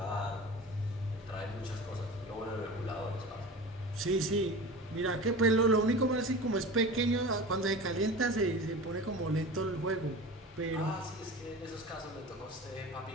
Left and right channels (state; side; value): normal; both; correlation 0.34